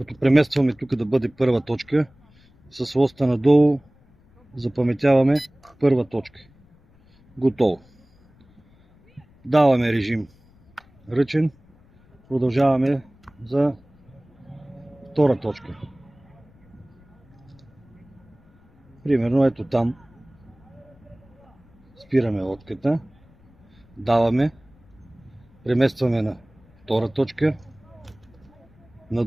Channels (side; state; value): left; noise; rumble, 29 dB below the sound